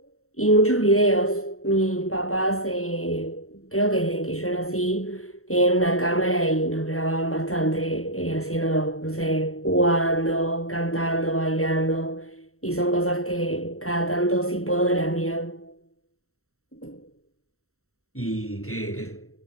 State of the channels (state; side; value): late; right; 0.63 ms